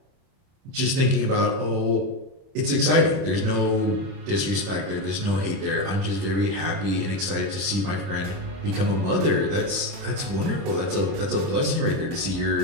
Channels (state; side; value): late; left; 30 ms